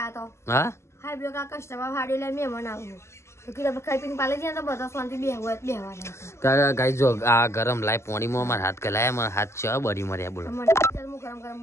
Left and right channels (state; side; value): late; right; 0.13 ms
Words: તો હા હાઈ બ્લો કા કસ્ટમર હાડી લે મેં મનાવ તો કે આપણે ખાઈ પીને પાડી જાય તો બધા શાંતિ બેહવાના ગાઈ જો આ ગરમ લાય પોણીમાં મારા હાથ ગલાયા મારા હાથ છે બળી મર્યા બોલો મને ચાલ હું ગરમ ગરમ